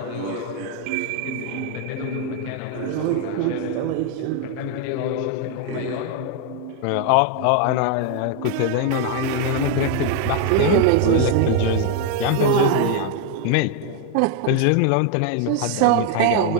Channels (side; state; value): both; different; correlation 0.01